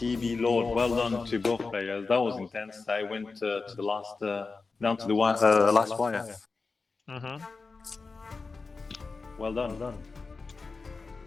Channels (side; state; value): right; quieter; 4.2 dB